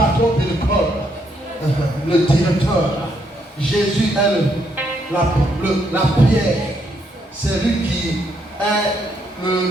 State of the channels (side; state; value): both; normal; correlation 0.74